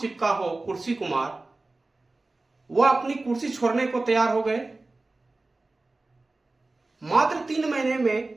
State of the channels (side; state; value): left; quieter; 3.2 dB